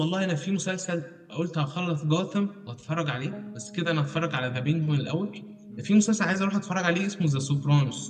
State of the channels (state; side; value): identical; both; correlation 1.00